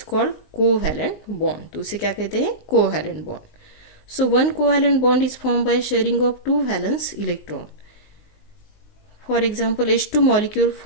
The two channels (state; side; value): late; right; 19 ms